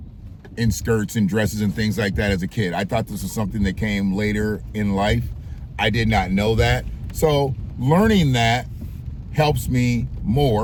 in skirts and dresses and things like that as a kid. I thought this was something that came later in life. I did not know that. So learning that helps me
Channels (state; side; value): identical; both; correlation 1.00